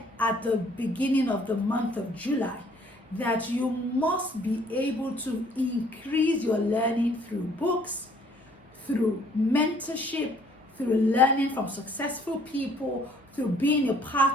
at the beginning of the month of July, that you must be able to increase your learning through books, through mentorship, through learning from successful people, through being a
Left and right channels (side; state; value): both; normal; correlation 0.60